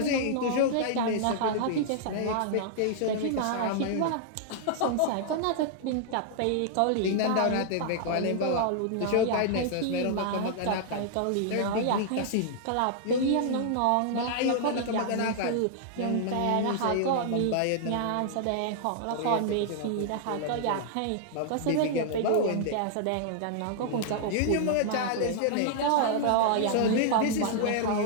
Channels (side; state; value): both; different; correlation -0.01